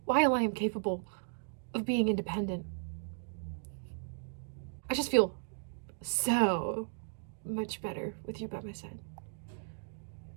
while I am capable of being independent. I just feel so much better with you by my side.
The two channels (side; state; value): left; silent; digital silence